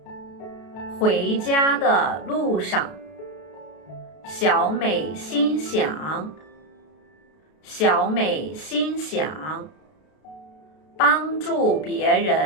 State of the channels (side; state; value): right; late; 32 ms